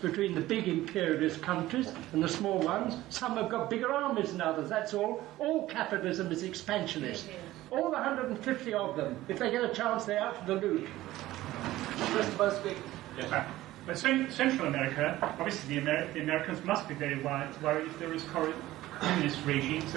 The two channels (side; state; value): left; quieter; 16.0 dB